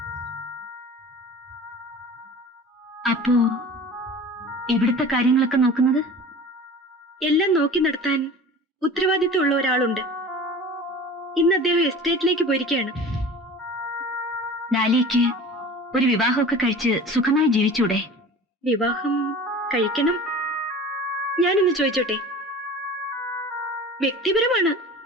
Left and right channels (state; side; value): normal; both; correlation 0.39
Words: അപ്പോ ഇവിടുത്തെ കാര്യങ്ങളൊക്കെ നോക്കുന്നത്? എല്ലാം നോക്കി നടത്താൻ ഉത്തരവാദിത്വമുള്ള ഒരാളുണ്ട്. ഇന്ന് അദ്ദേഹം എസ്റ്റേറ്റിലേക്ക് പോയിരിക്കുകയാണ്. ഡാലിയയ്ക്ക് ഒരു വിവാഹമൊക്കെ കഴിച്ച് സുഖമായി ജീവിച്ചൂടെ? വിവാഹം കഴിക്കണം. ഞാനൊന്ന് ചോദിച്ചോട്ടെ? വ്യക്തിപരമാണ്.